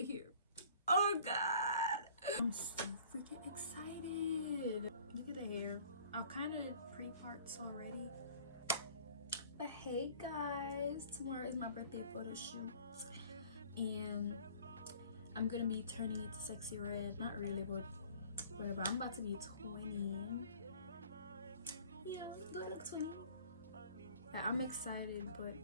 here. Oh god, I'm so freaking excited. Look at the hair. I kind of did pre-parts already. But hey guys, tomorrow is my birthday photo shoot and I'm gonna be turning it to sexy red. Not really, but whatever. I'm about to be 20. Yeah, do I look 20? Yeah, I'm excited, but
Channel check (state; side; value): inverted; both; correlation -0.51